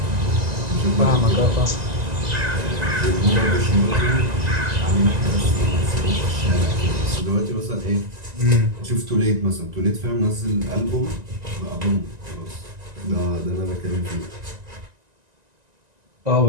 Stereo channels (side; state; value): left; late; 1.9 ms